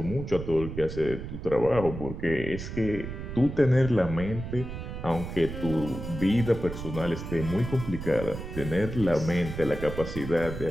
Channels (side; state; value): right; noise; rumble, 8 dB below the sound